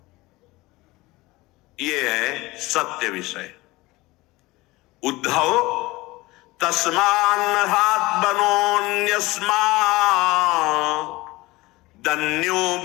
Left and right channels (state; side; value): quieter; right; 20.7 dB